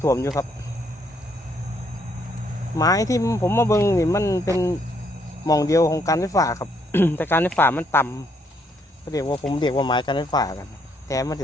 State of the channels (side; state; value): both; normal; correlation 0.71